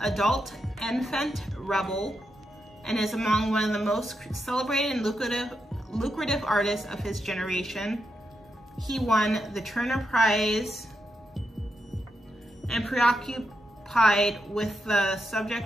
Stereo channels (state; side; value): normal; both; correlation 0.84